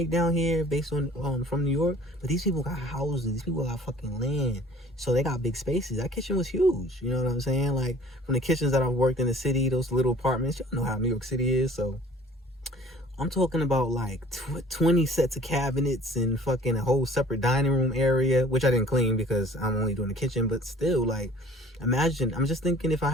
down here based on from New York? But these people got houses. These people got fucking land. So they got big spaces. That kitchen was huge. You know what I'm saying? Like, from the kitchens that I've worked in the city, those little apartments, y'all know how New York City is. So I'm talking about like 20 sets of cabinets and fucking a whole separate dining room area, which I didn't clean because I'm only doing the kitchen. But still, like, imagine, I'm just thinking if I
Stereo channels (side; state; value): both; normal; correlation 0.51